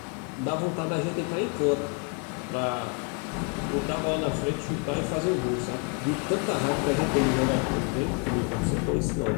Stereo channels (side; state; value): right; quieter; 35.8 dB